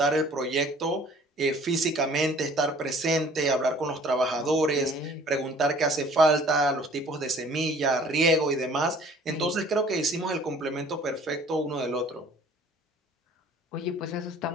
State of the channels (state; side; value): normal; both; correlation 0.52